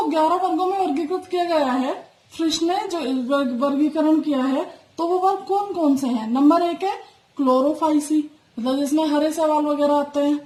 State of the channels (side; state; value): both; identical; correlation 1.00